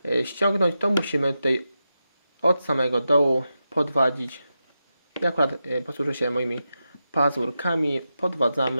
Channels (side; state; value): both; inverted; correlation -0.89